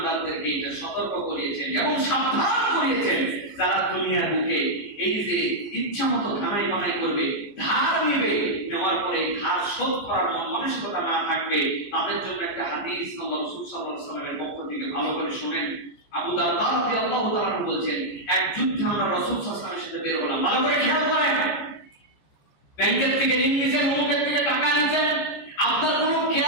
এটা সতর্ক করিয়েছেন এবং সাবধান করিয়েছেন। যারা দুনিয়ার বুকে এই যে ইচ্ছামতো ধানাই বানাই করবে, ধার নিবে, নেওয়ার পরে ধার শোধ করার মানসিকতা না থাকবে, তাদের জন্য একটা হাদিস আল্লাহ রাসূল সাল্লাল্লাহু আলাইহি ওয়াসাল্লামের পক্ষ থেকে ভালো করে শুনেন। আবু দারদা রাদিয়াল্লাহু তাআলা বলছেন, এক যুদ্ধে আমরা রাসূল সাল্লাল্লাহু আলাইহি ওয়াসাল্লামের সাথে বের হলাম। ভালো করে খেয়াল করেন, ব্যাংকের থেকে ঋণ নিছেন, অমুকের থেকে টাকা নিছেন, আপনার কোনো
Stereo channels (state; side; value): late; right; 14 ms